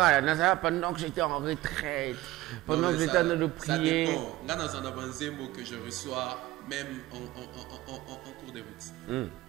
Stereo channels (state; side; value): quieter; left; 17.5 dB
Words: que j'étais en retraite, pendant que j'étais en train de prier. Ça dépend. Là, dans un avancé mot que je reçois, même en cours de route.